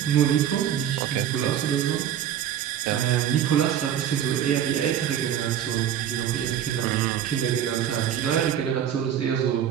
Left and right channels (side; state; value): left; quieter; 10.0 dB